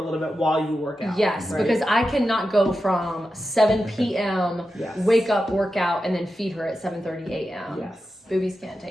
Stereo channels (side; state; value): both; normal; correlation 0.90